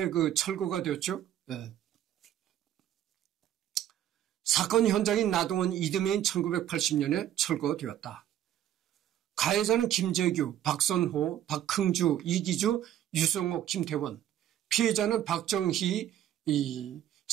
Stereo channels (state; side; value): quieter; left; 11.5 dB